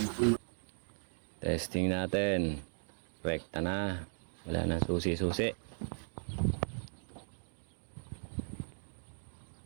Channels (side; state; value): left; silent; digital silence